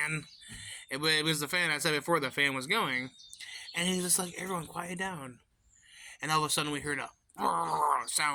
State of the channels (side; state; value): both; identical; correlation 1.00